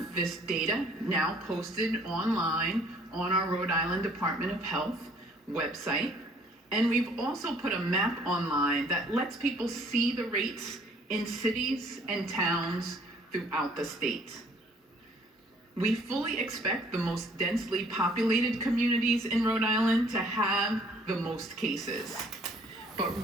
this data now posted online on our Rhode Island Department of Health website, and we've also put a map online that lets people see the rates in cities and towns throughout the state. We fully expect the most densely populated communities in Rhode Island to have the most cases. But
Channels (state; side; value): normal; both; correlation 0.59